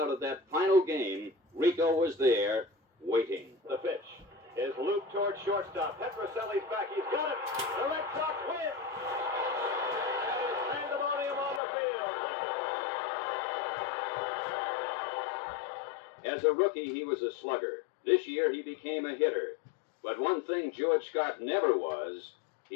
of that final game, Rico was there, waiting. The pitch is looped toward shortstop. Petrocelli's back. He's got it. The Red Sox win. And it's pandemonium on the field. As a rookie, he was a slugger. This year, he became a hitter. But one thing George Scott never was,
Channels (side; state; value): right; drops out; at 11.6 s